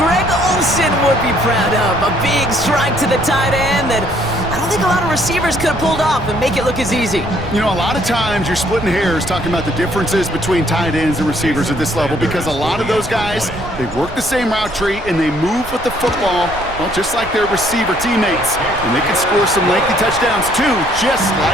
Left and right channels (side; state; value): right; noise; rumble, 14 dB below the sound